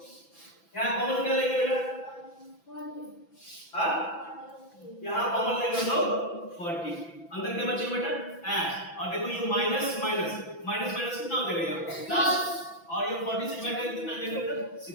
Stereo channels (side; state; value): right; late; 6.0 ms